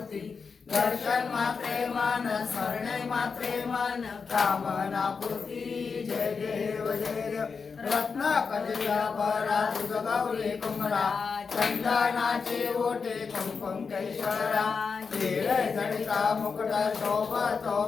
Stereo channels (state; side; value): quieter; right; 5.3 dB